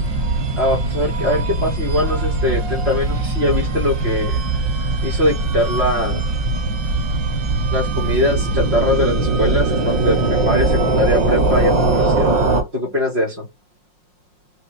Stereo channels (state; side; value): late; left; 5.6 ms